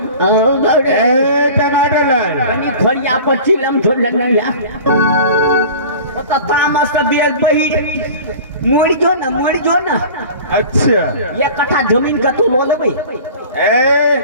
टमाटर लाए। खड़िया पर चिलम थोड़ लगना तामस का बेल बही मोड़ जो ना। अच्छा। 1 कट्ठा जमीन का तू लो ले भाई।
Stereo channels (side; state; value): both; inverted; correlation -0.40